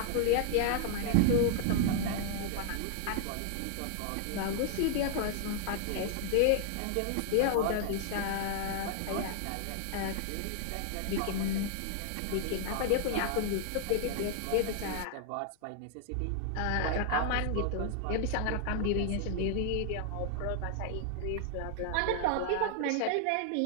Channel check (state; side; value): different; both; correlation 0.00